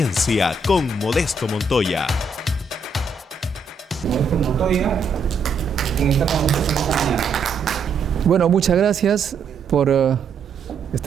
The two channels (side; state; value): left; quieter; 4.1 dB